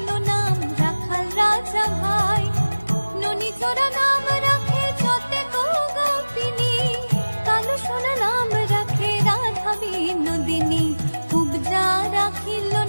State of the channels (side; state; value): both; inverted; correlation -1.00